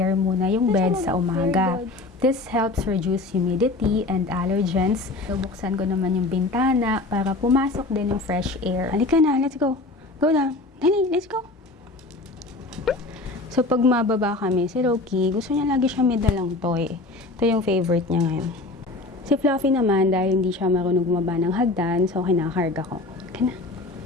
muna yung bed sa umaga. This helps reduce humidity and allergens. Buksan ko naman yung bintana para pumasok din yung fresh air. Halika na, let's go. Go down. Dali, let's go. So, pag mababa kami, si Loki, gusto niya lagi siya may dalang toy. Ito yung favorite niya ngayon. Si Fluffy naman, dahil hindi siya marunong bumaba ng hagdan, so kinakarga ko. Kana.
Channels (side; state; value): right; quieter; 3.2 dB